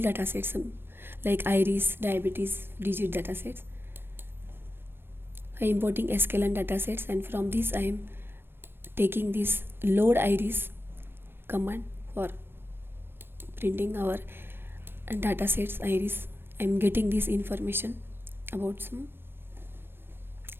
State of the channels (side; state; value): left; late; 0.10 ms